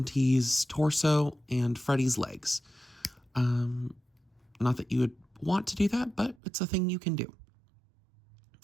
torso and Freddy's legs. Not that you would want to do that, but it's a thing you can do.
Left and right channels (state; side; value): drops out; left; at 6.4 s